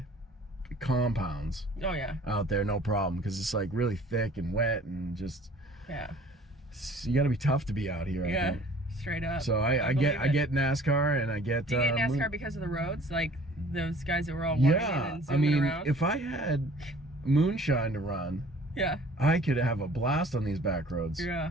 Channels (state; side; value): normal; both; correlation 0.51